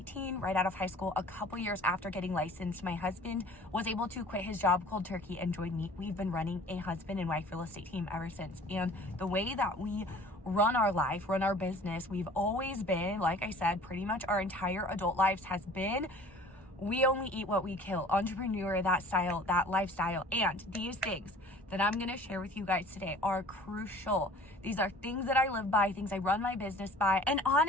right out of high school. A couple years after getting licensed, my husband was able to quit his job cold turkey and join me. We've been running a husband and wife real estate team ever since. And the way that we run our life, run our business, we've always been, like I said, pretty much our entire adult lives has been, we only eat what we kill. Entrepreneur, that style, that lifestyle. And these things that I'm going to share with you guys today are crucial. These are things that I live by, things I run my business by. And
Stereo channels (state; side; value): normal; both; correlation 0.48